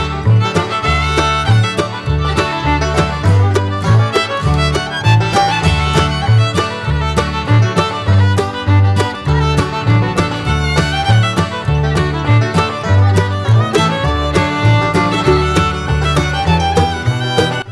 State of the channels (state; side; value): identical; both; correlation 1.00